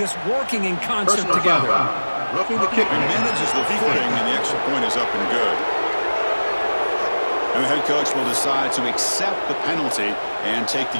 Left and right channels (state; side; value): inverted; both; correlation -1.00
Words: working in concert together. Roughing the kicker. He manages the footing, and the extra point is up and good. And the head coach will decide to accept the penalty and take the